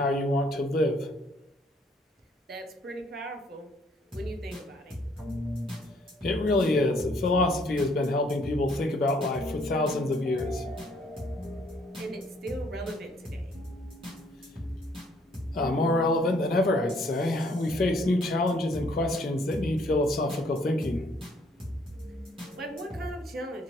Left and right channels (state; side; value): normal; both; correlation 0.65